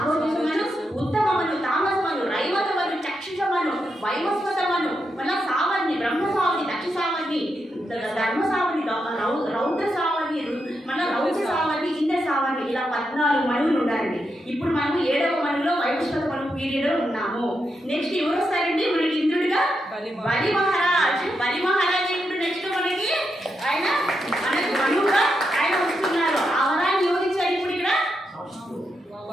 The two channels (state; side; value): normal; both; correlation 0.84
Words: ఉత్తమమను, తామసమను, రైవతమను, చక్షుషమను, వైవస్వతమను, మళ్ళా సావర్ణి, బ్రహ్మ సావర్ణి, దక్ష సావర్ణి, ధర్మ సావర్ణి, రౌద్ర సావర్ణి, మళ్ళీ రౌద్ర సావర్ణి, ఇంద్ర సావర్ణి, ఇలా 14 మనువులు ఉండాలండి. ఇప్పుడు మనము 7వ మనువులో వైవస్వత మనువు పీరియడ్లో ఉన్నాము. నెక్స్ట్ ఎవరు వస్తారండి మనకి ఇంద్రుడిగా? బలి మహారాజ్. బలి మహారాజ్ ఇప్పుడు నెక్స్ట్ మనకి ఆయన మనకు మనువుగా ఆయన వస్తున్నారు. ఆ వరాన్ని ఎవరిచ్చారు ఇప్పుడు ఇక్కడ?